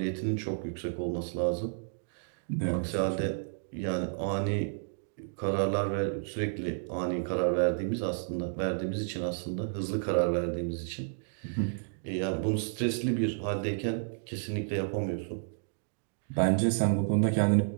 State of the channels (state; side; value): silent; left; digital silence